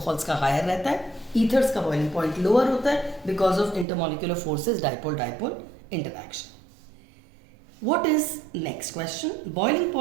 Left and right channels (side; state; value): left; drops out; at 3.9 s